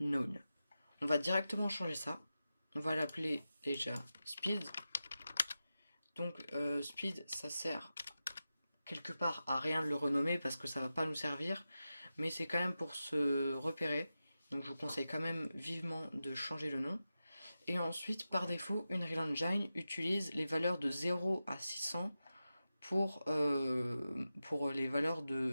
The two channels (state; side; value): inverted; both; correlation -0.92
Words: On va directement changer ça. On va l'appeler déjà speed. Donc speed, ça sert quelque part à rien de le renommer parce que ça va pas nous servir, mais c'est quand même pour se repérer. Donc je vous conseille quand même vivement de changer le nom. Et ensuite, par défaut, Unreal Engine utilise les valeurs de 0 à 600 pour les valeurs de